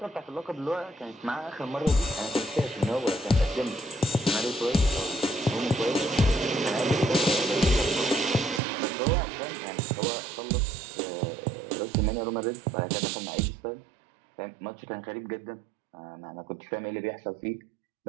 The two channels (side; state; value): left; drops out; at 8.6 s